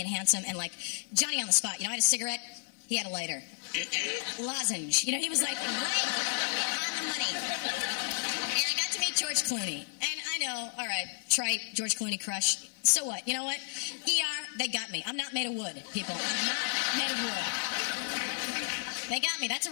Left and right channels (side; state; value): right; silent; 56 dB below the other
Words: and handsome, and like Johnny on the spot. You know, I had a cigarette, he had a lighter. Lozenge. You know, he was like right on the money. And I got to meet George Clooney. And I know, all right, trite, George Clooney crush. So what? You know what? ER, they got me. I'm not made of wood, people. I'm not made of wood. They got me. That's a